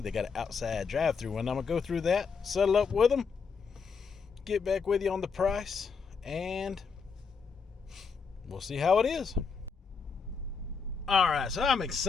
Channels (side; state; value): right; quieter; 5.5 dB